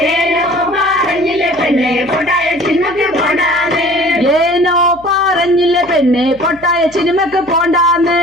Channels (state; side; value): noise; left; hum, 24 dB below the sound